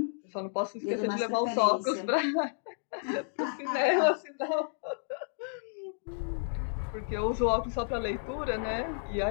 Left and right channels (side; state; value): right; silent; digital silence